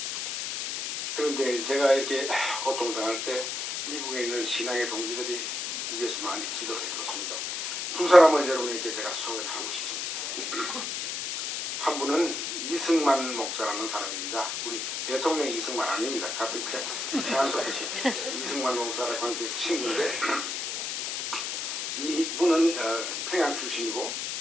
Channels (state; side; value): noise; left; hiss, 3 dB below the sound